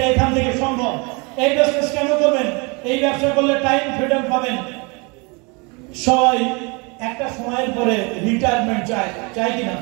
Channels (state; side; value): quieter; left; 29.8 dB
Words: এখান থেকে সম্ভব। এই বিজনেস কেন করবেন? এই ব্যবসা করলে টাইম ফ্রিডম পাবেন। সবাই একটা সময়ের পরে রিটায়ারমেন্ট চায় কিনা?